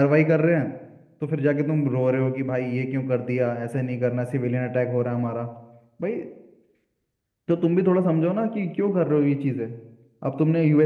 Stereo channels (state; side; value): identical; both; correlation 1.00